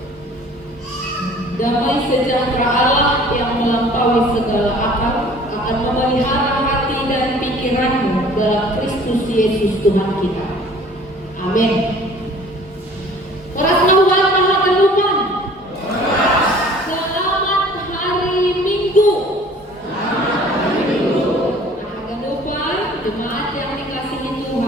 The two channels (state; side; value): normal; both; correlation 0.50